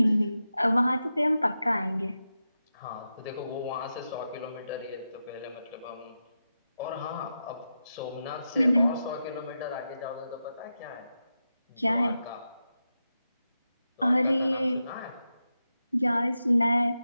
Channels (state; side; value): inverted; both; correlation -0.90